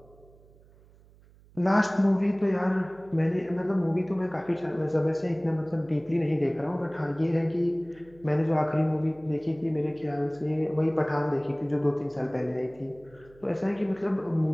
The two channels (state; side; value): noise; right; hum, 26 dB below the sound